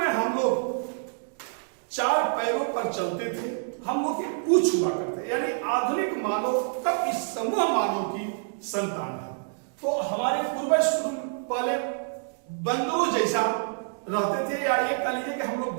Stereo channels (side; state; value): left; silent; digital silence